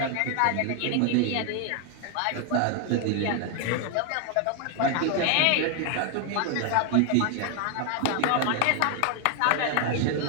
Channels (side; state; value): both; different; correlation 0.00